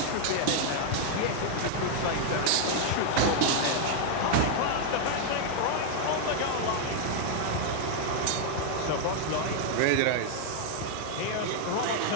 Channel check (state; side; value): different; both; correlation 0.00